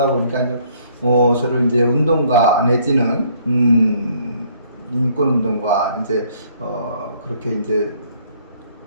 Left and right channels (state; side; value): inverted; both; correlation -0.63